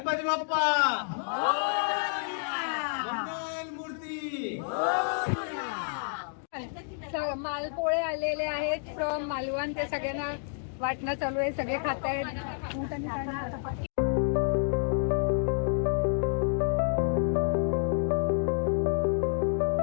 Bappa मूर्ती. मालपोळे आलेले आहेत फ्रॉम मालवण. ते सगळ्यांना वाटणं चालू आहे. सगळे खात आहेत.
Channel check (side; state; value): right; silent; digital silence